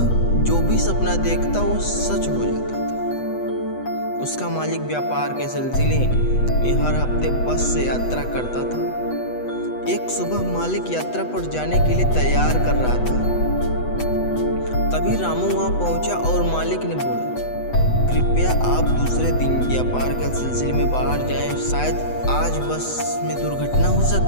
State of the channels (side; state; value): right; late; 8.1 ms